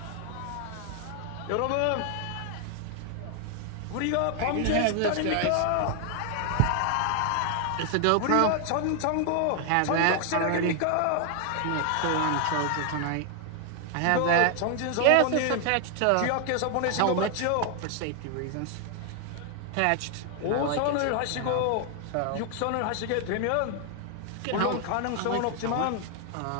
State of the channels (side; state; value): both; different; correlation 0.00